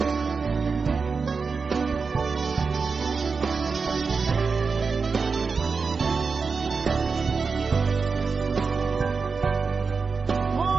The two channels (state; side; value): quieter; left; 4.9 dB